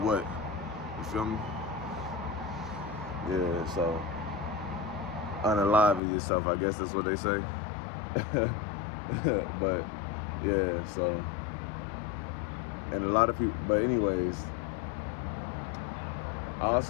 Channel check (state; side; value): drops out; right; at 6.0 s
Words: You feel me? Yeah, so unalive yourself, I guess that's what they say. But yeah, so, and a lot of people, but anyways,